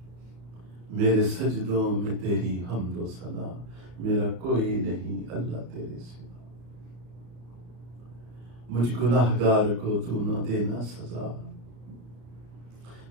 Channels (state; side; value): late; left; 34 ms